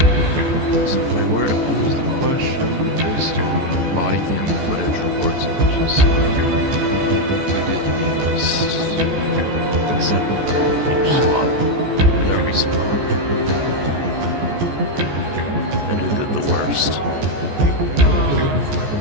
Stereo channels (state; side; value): late; left; 14 ms